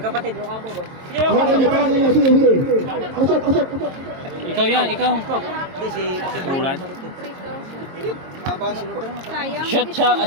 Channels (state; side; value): late; left; 22 ms